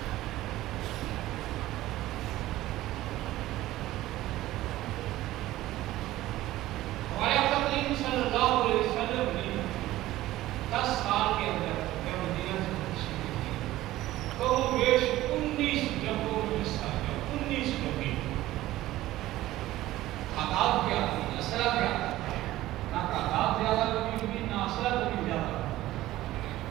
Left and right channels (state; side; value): quieter; left; 15.8 dB